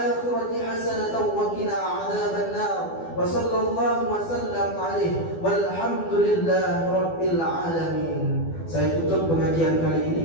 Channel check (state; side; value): late; right; 12 ms